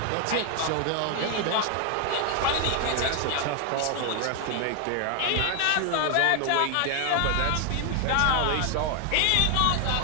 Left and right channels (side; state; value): both; different; correlation 0.01